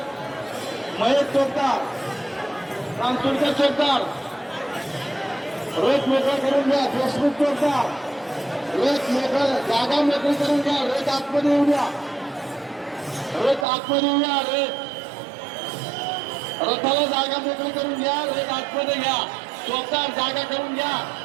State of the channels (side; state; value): left; drops out; at 13.7 s